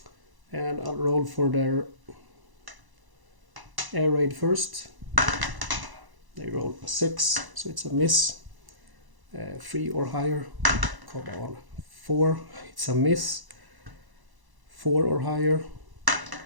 And I'll roll for their air raid first. They roll a 6, so it's a miss. 3 or higher. Come on. 4, it's a miss. 4 or higher.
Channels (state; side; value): late; left; 1.0 ms